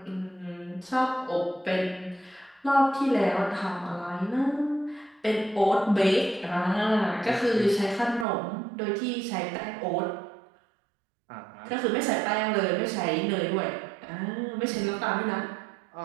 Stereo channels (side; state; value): left; drops out; at 8.2 s